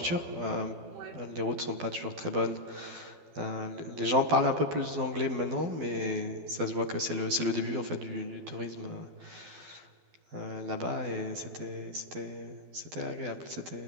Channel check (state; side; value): late; left; 12 ms